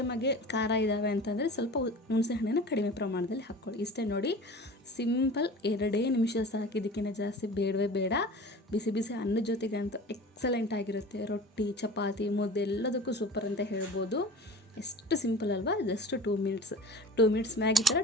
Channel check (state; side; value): normal; both; correlation 0.39